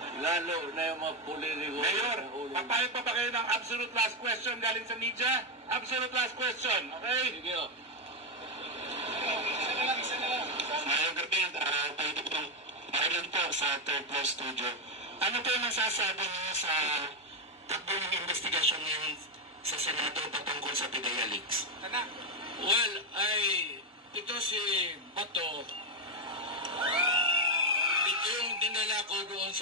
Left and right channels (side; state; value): both; normal; correlation 0.06